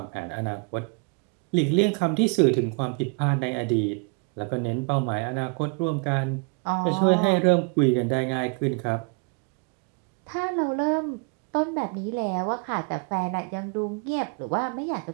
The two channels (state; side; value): quieter; left; 34.9 dB